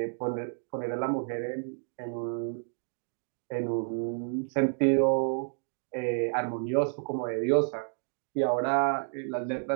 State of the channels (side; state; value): left; silent; digital silence